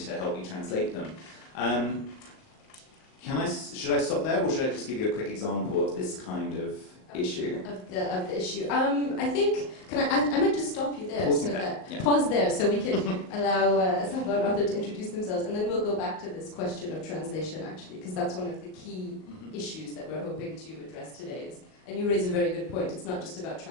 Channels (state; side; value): late; right; 38 ms